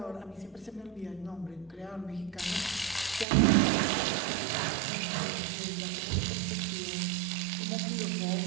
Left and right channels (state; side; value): drops out; left; at 3.2 s